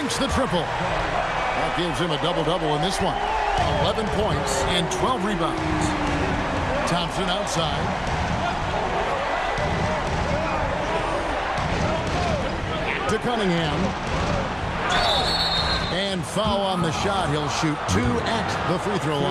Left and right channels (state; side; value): identical; both; correlation 1.00